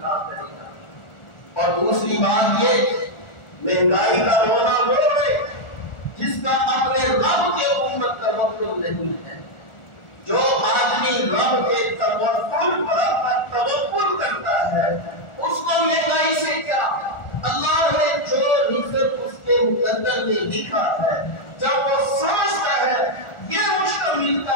کرے گا۔ اور دوسری بات یہ، مہنگائی کا رونا وہ ہے جس کا اپنے رب کے اوپر توکل نہیں ہے۔ جو آدمی رب کے توکل کرتا ہے اس کو مہنگائی سے کیا؟ اللہ نے جو رزق اس کے مقدر میں لکھا ہے، جب وہ سمجھتا ہے یہ مجھ کو ملتا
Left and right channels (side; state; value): right; late; 1.4 ms